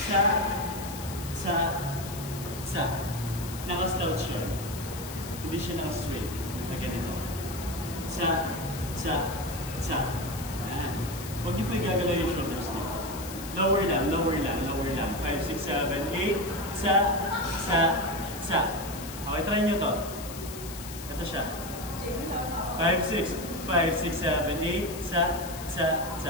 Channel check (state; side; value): noise; left; hiss, 12 dB below the sound